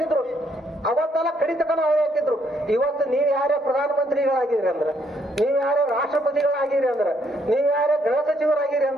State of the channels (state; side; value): normal; both; correlation 0.71